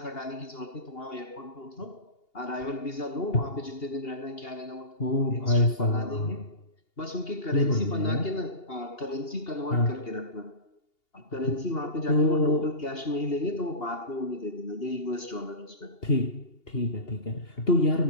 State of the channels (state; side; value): late; right; 2.8 ms